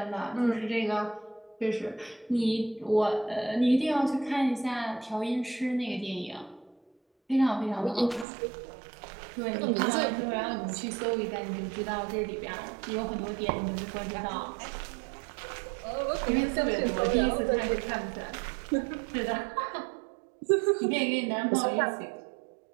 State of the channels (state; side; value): drops out; left; at 8.2 s